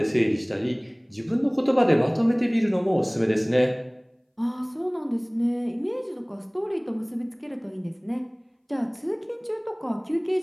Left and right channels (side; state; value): both; identical; correlation 1.00